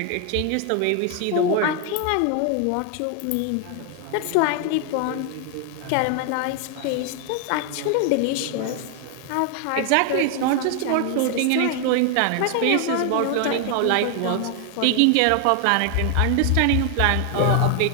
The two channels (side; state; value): both; different; correlation 0.00